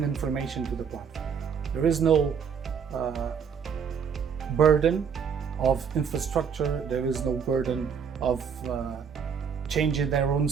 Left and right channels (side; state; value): left; quieter; 6.9 dB